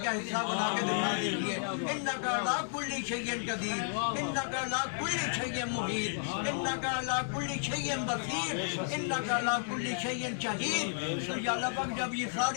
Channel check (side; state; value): right; silent; digital silence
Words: کا حصہ بنا کے دکھا دیجیے. انک علی کل شیء قدیر، انک علی کل شیء محیط، انک علی کل شیء بصیر، انک علی کل شیء شہید. تو یا اللہ پاک جب یہ